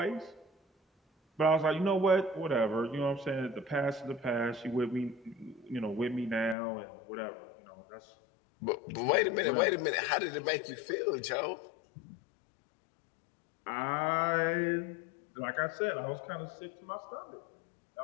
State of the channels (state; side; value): drops out; right; at 6.6 s